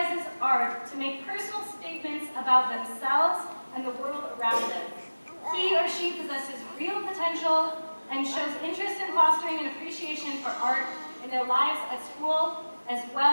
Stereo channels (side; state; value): both; inverted; correlation -1.00